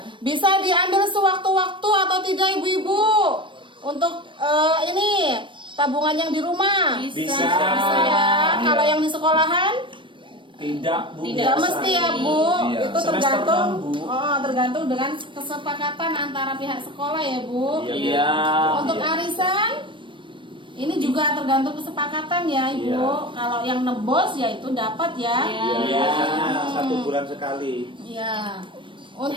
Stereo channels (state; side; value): late; left; 0.24 ms